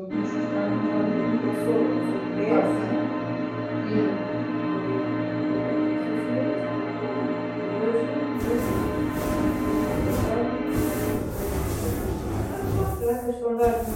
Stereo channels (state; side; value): identical; both; correlation 1.00